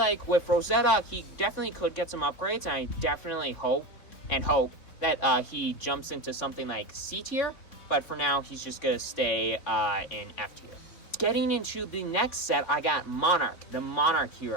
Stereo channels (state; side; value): late; right; 3.7 ms